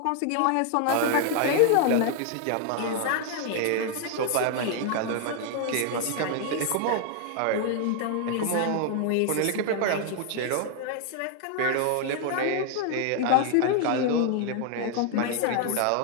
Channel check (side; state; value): both; different; correlation 0.00